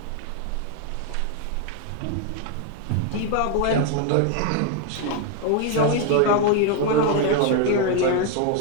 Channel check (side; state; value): both; different; correlation 0.01